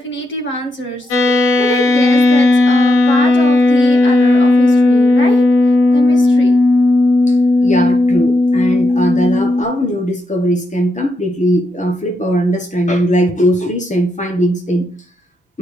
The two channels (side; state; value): both; normal; correlation 0.83